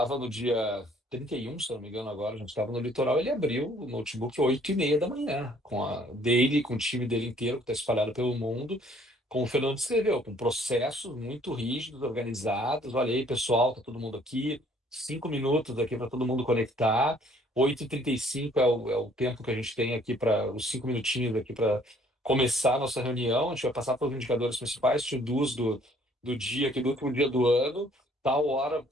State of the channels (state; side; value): normal; both; correlation 0.60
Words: no dia 31, se eu não me engano, agora, a gente estava no litoral. Ele abriu o notebook 8h30 da manhã, com o time dele inteiro, que está espalhado pelo mundo, como o Fernando descreveu, com processos muito rígidos, organizados. Olha aí, pessoal, tá todo mundo aqui, 5 minutos aqui para todo mundo conectar. 8h35 é o tempo que a gente tem aqui, para os 5 minutinhos aqui para começar a nossa reunião. A gente vai passar pelos indicadores principais, to-dos do dia, aqui do último dia do ano. Tal hora